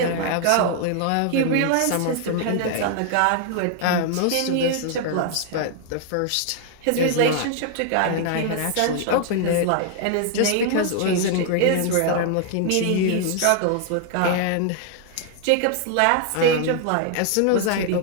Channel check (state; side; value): different; both; correlation 0.00